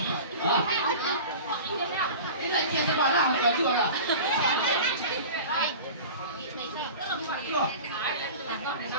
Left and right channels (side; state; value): both; inverted; correlation -0.35